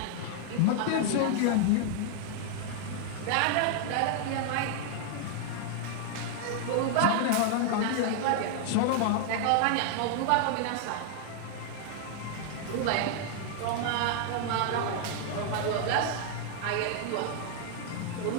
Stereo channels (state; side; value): different; both; correlation 0.00